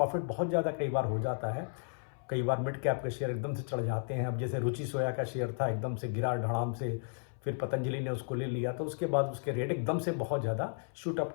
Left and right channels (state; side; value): silent; right; 55 dB below the other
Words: बहुत ज़्यादा कई बार हो जाता है। कई बार मिड कैप के शेयर एकदम से चढ़ जाते हैं। अब जैसे रुचि सोया का शेयर था, एकदम से गिरा धड़ाम से फिर पतंजलि ने उसको ले लिया, तो उसके बाद उसके रेट एकदम से बहुत ज़्यादा शूट अप